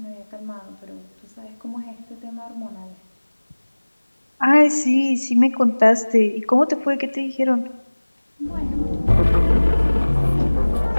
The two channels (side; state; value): both; inverted; correlation -1.00